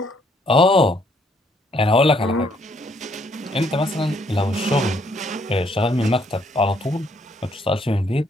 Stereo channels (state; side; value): normal; both; correlation 0.68